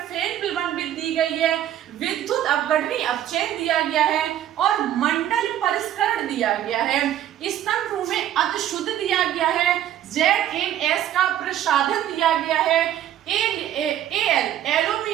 फेन फिलामेंट दी गई है, विद्युत अपघटनी अपचयन दिया गया है और मंडल परिष्करण दिया गया है। स्तंभ 2 में अतिशुद्ध दिया गया है, ZnS का प्रसाधन दिया गया है,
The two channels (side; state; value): left; quieter; 11.7 dB